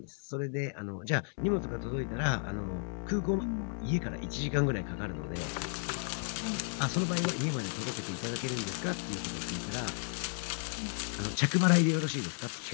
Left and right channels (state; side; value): silent; right; 55 dB below the other